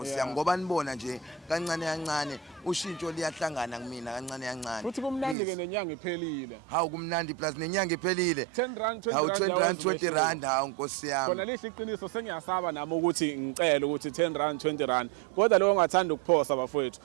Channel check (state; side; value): drops out; left; at 5.4 s